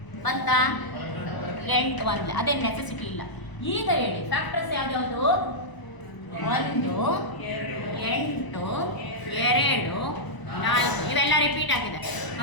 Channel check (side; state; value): right; late; 1.0 ms